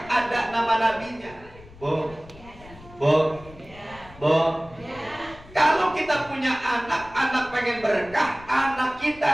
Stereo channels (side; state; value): left; noise; rumble, 20 dB below the sound